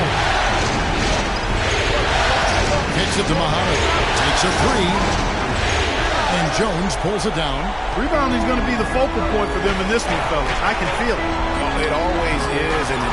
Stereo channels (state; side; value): identical; both; correlation 1.00